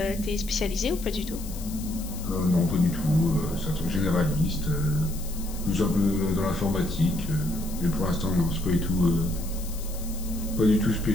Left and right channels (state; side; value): noise; left; hiss, 14 dB below the sound